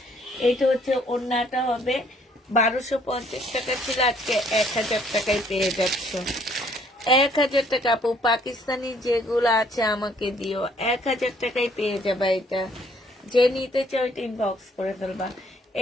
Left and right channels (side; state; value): both; normal; correlation 0.63